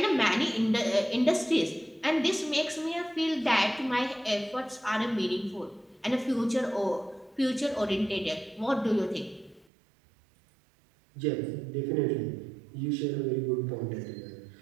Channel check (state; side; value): drops out; left; at 9.7 s